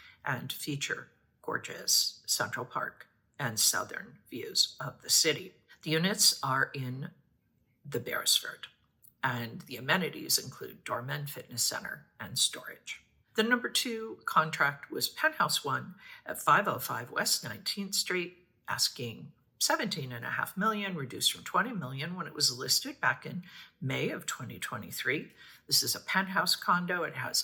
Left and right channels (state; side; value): identical; both; correlation 1.00